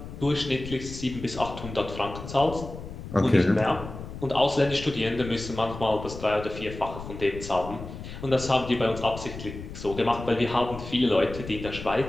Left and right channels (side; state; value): left; noise; rumble, 11 dB below the sound